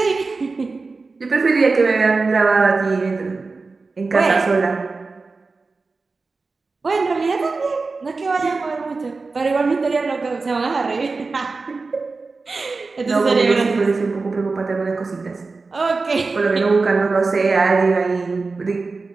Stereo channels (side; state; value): left; quieter; 4.0 dB